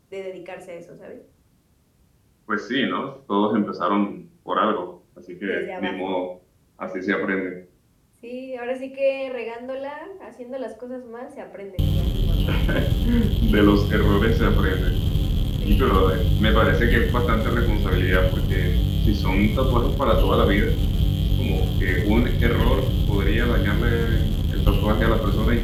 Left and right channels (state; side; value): identical; both; correlation 1.00